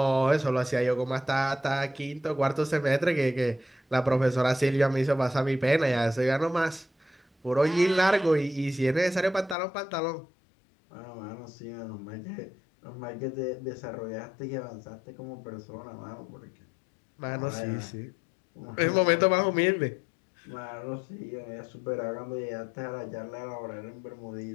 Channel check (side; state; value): right; drops out; at 9.6 s